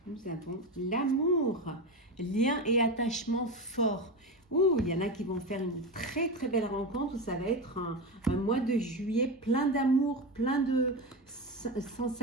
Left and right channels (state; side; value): normal; both; correlation 0.19